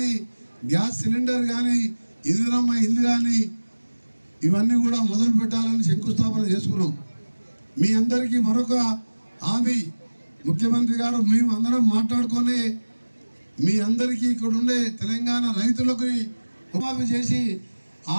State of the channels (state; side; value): inverted; both; correlation -1.00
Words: గ్యాస్ సిలిండర్ కానీ, ఇందిరమ్మ ఇల్లు కానీ ఇవన్నీ కూడా మొదలు పెట్టాలని శంకుస్థాపన చేసుకున్నాం. మీ అందరికీ మరొక హామీ ముఖ్యమంత్రి గారు మేము అందరం మాట్లాడుకొని మీ అందరికీ ఇక్కడ ఉండే తెలంగాణ రైతులకు రుణమాఫీ చేసి